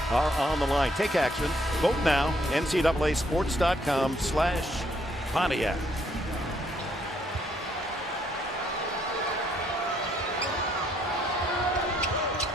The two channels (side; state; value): both; normal; correlation 0.70